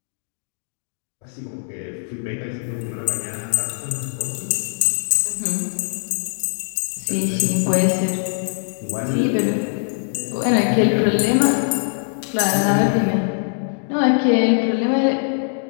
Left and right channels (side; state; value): right; silent; digital silence